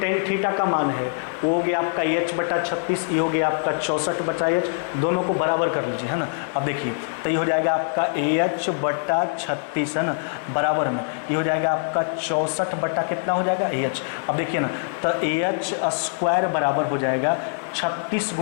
थीटा का मान है, वो हो गया आपका एच बटा 36, ये हो गया आपका 64 बटा एच, दोनों को बराबर कर लीजिए, है ना। अब देखिए तो ये हो जाएगा आपका एच बटा 36, है ना, बराबर में ये हो जाएगा आपका 64 बटा कितना हो जाएगा एच। अब देखिए ना तो एच स्क्वायर बराबर हो जाएगा 36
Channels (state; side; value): silent; right; 63 dB below the other